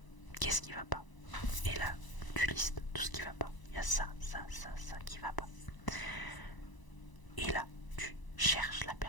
qu'est-ce qui va pas, et là tu listes tout ce qui va pas, il y a ça qui va pas, et là tu cherches la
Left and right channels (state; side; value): late; right; 1.0 ms